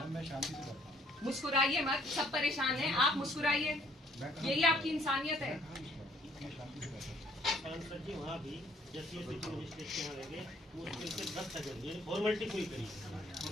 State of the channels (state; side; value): normal; both; correlation 0.62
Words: मुस्कुराइए मत। सब परेशान हैं, आप मुस्कुराइए। यही आपकी इंसानियत है। सांसद जी वहाँ भी जैसे मजिस्ट्रेट के यहाँ लगे मुश्किल से 10 सेकंड फॉर्मेलिटी पूरी करी।